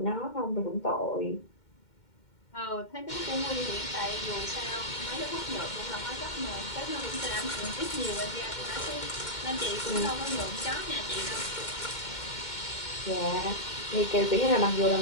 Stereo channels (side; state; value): right; late; 2.1 ms